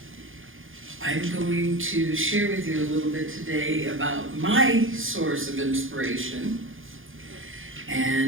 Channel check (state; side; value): late; left; 0.58 ms